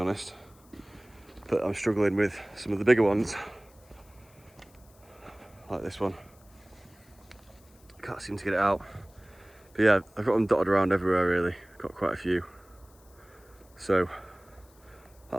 But I'm struggling with some of the bigger ones, like this one. Can't seem to get it out. But yeah, I've got them dotted around everywhere really. Got quite a few. So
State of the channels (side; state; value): left; noise; hiss, 29 dB below the sound